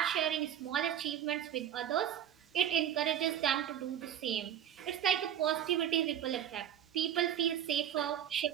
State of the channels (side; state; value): left; quieter; 10.3 dB